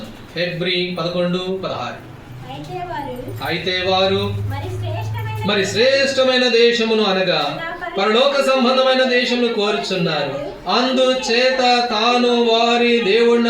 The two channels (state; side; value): identical; both; correlation 1.00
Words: హెబ్రీ 11:16. అయితే వారు మరి శ్రేష్టమైన దేశమును అనగా పరలోక సంబంధమైన దేశమును కోరుచున్నారు. అందుచేత తాను వారి